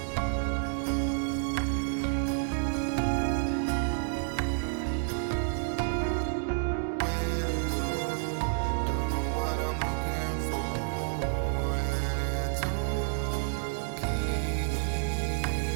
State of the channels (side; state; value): left; silent; digital silence